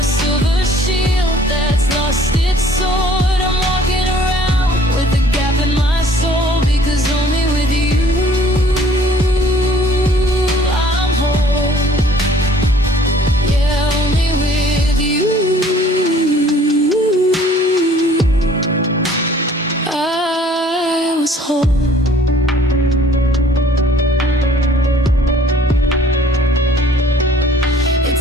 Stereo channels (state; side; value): normal; both; correlation 0.56